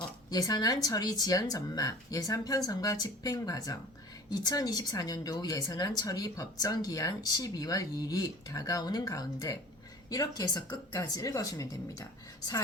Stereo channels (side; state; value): both; normal; correlation 0.42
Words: 예산안 처리 지연 전망, 예산 편성과 집행 과정, 2024년도 예산안 처리 법정 기한 12월 2일이 다가오는 가운데 이렇게 해서 끝까지 읽어주면 됩니다.